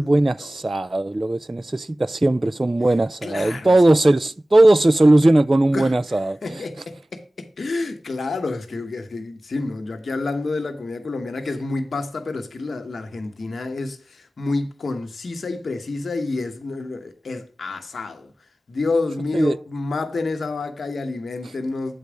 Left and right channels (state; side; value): normal; both; correlation 0.96